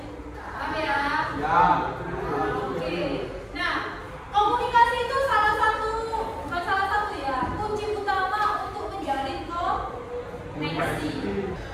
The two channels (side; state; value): both; identical; correlation 1.00